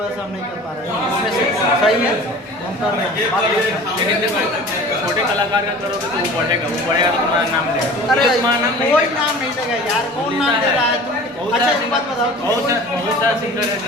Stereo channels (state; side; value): normal; both; correlation 0.42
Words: से हम नहीं कर पा रहे हैं। इसमें से सही है हम कर रहे हैं। लेकिन देखो छोटे कलाकार का करोगे तो वो बढ़ेगा तो तुम्हारा नाम लेगा। अरे तुम्हारा नाम कोई नाम नहीं देगा यार, कौन नाम दे रहा है तुम? अच्छा एक बात बताओ, बहुत सारा सिंगर है जो